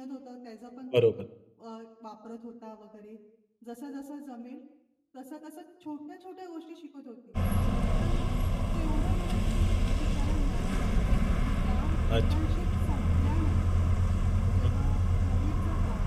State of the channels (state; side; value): identical; both; correlation 1.00